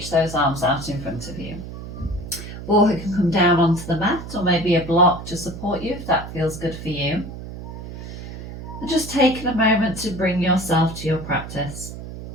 those arms out in front of you. Or you can come down onto the mat, or maybe a block to support you if that feels good for you. And just taking a moment to bring yourself to your practice.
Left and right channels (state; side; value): noise; right; hum, 10 dB below the sound